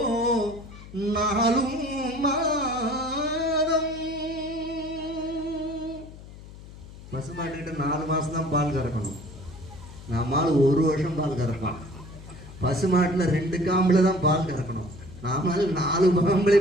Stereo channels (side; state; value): left; noise; hum, 17 dB below the sound